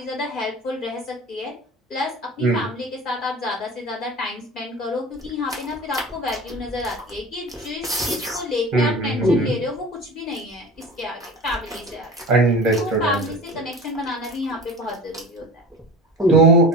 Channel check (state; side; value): normal; both; correlation 0.35